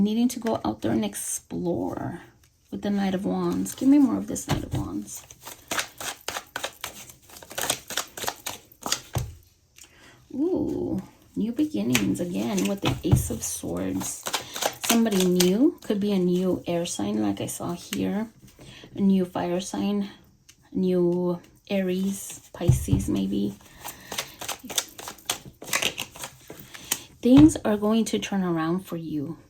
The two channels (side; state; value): both; identical; correlation 1.00